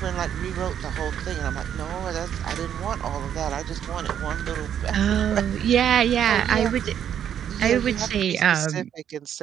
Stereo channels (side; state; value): left; quieter; 9.4 dB